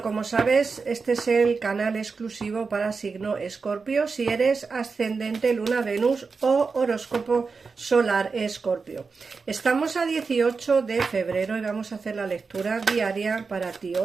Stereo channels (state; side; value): quieter; left; 4.7 dB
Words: como sabes, este es el canal exclusivo para signo Escorpio, si eres ascendente Luna Venus o horóscopo solar Escorpio. Estamos a 18 de febrero y vamos a hacer la lectura diaria para ti.